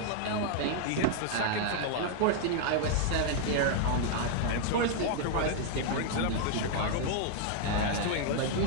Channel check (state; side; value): different; both; correlation 0.00